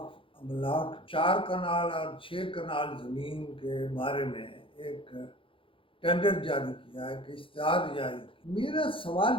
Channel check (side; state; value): right; late; 0.25 ms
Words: املاک 4 کنال اور 6 کنال زمین کے بارے میں ایک ٹینڈر جاری کیا ہے، کہ اشتہار جاری کیا۔ میرا سوال